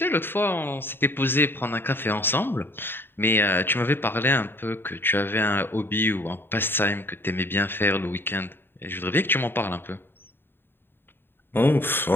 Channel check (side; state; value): right; late; 0.10 ms